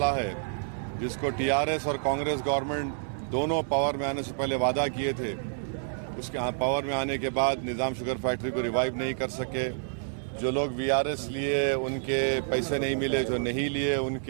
है जिसको टीआरएस और कांग्रेस गवर्नमेंट दोनों पावर में आने से पहले वादा किए थे, उसके पावर में आने के बाद निज़ाम शुगर फैक्ट्री को रिवाइव नहीं कर सके। जो लोग वीआरएस लिए उनके पैसे नहीं मिले, जो नहीं लिए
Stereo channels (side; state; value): left; silent; digital silence